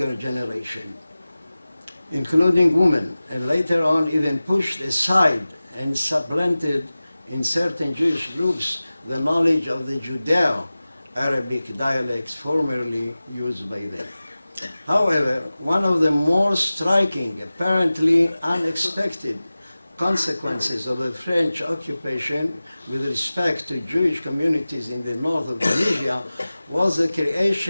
generation, including women, and later on even pushed aside and supplanted in certain Jewish groups the knowledge of the Judeo-Arabic dialects formerly used by them. However, one of the more striking, apparently unexpected consequences of the French occupation with respect to Jewish communities in the north of Tunisia was the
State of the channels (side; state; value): both; inverted; correlation -0.97